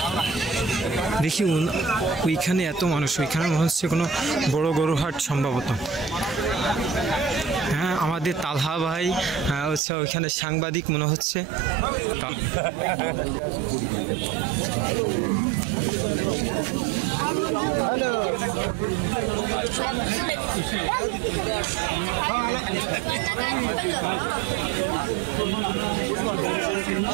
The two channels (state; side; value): drops out; left; at 9.8 s